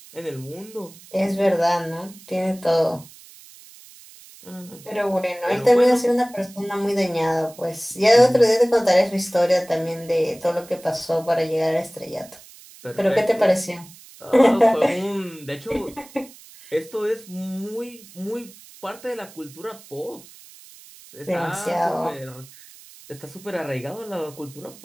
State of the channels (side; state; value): right; noise; hiss, 21 dB below the sound